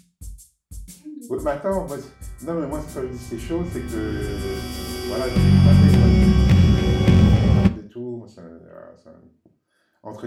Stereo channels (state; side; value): identical; both; correlation 1.00